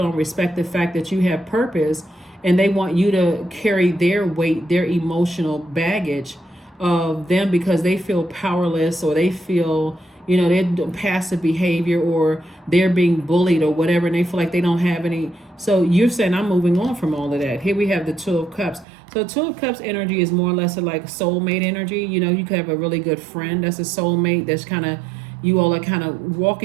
respect the fact that you have purpose, and they want you to carry their weight, their emotional baggage of them, because they feel powerless, or they feel they're passive behavior, or they're being bullied or whatever, and they feel like they don't have any. So you're saying, I'm moving on from all of that. Here we have the Two of Cups. So Two of Cups energy is more or less like soulmate energy. You could have a really good friend that's a soulmate, that's kind of, you all are kind of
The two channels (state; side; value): drops out; left; at 18.9 s